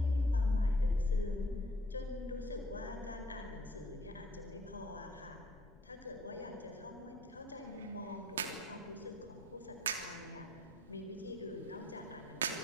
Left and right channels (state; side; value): noise; left; rumble, 20 dB below the sound